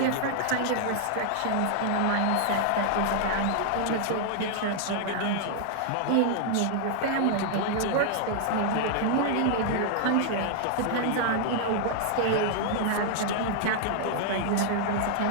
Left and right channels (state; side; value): different; both; correlation -0.01